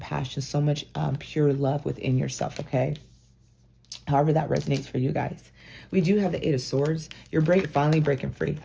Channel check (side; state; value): both; identical; correlation 1.00